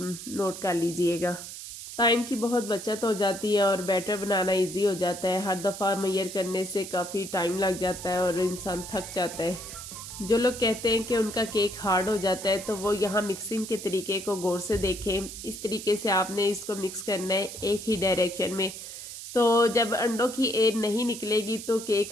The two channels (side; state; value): right; noise; hiss, 10 dB below the sound